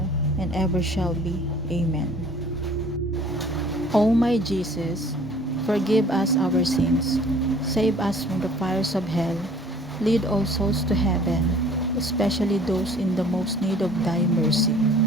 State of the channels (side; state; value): both; normal; correlation 0.52